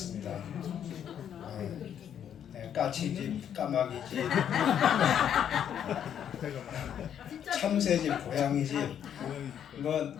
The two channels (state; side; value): quieter; right; 9.2 dB